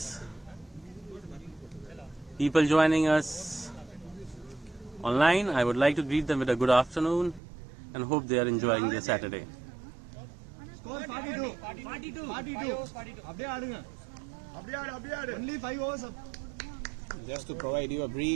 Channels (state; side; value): drops out; left; at 7.4 s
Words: people joining us online, I would like to greet them with a good afternoon and hope they are enjoying their Saturday. Score 42. 42. Only 5 overs. Just to provide you a